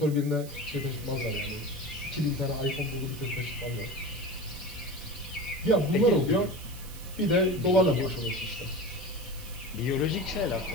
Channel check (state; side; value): noise; right; hiss, 17 dB below the sound